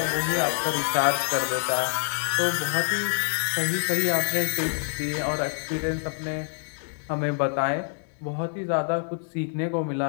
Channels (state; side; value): silent; right; digital silence